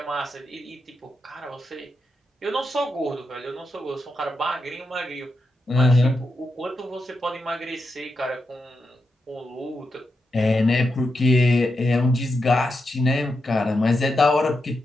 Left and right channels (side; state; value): both; normal; correlation 0.86